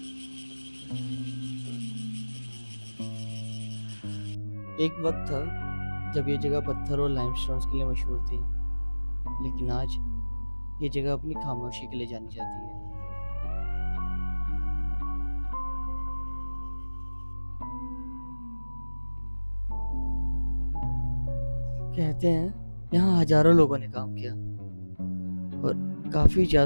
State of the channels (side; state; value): both; inverted; correlation -1.00